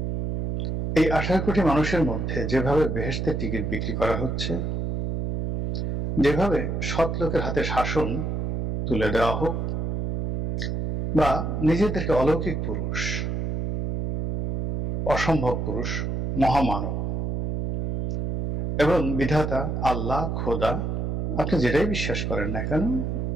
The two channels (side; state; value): right; noise; hum, 2 dB below the sound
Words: এই 18 কোটি মানুষের মধ্যে যেভাবে বেহেশতের টিকিট বিক্রি করা হচ্ছে, যেভাবে সৎ লোকের হাতে শাসন তুলে দেওয়া হোক, বা নিজেদেরকে অলৌকিক পুরুষ, অসম্ভব পুরুষ, মহামানব এবং বিধাতা, আল্লাহ, খোদা, আপনি যেটাই বিশ্বাস করেন না কেন,